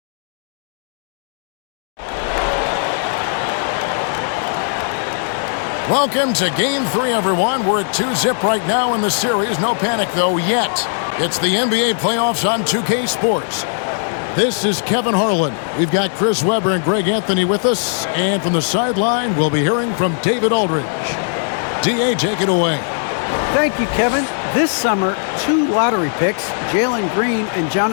Welcome to Game 3, everyone. We're at 2-zip right now in the series. No panic, though, yet. It's the NBA playoffs on 2K Sports. This is Kevin Harlan. We've got Chris Webber and Greg Anthony with us. And from the sideline, we'll be hearing from David Aldridge. D.A., take it away. Thank you, Kevin. This summer, 2 lottery picks, Jalen Green and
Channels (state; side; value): silent; right; digital silence